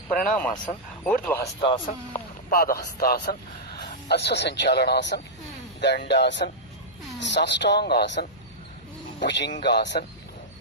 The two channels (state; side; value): noise; left; hum, 27 dB below the sound